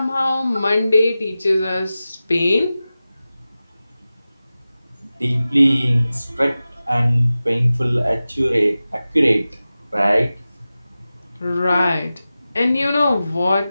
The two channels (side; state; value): both; inverted; correlation -0.95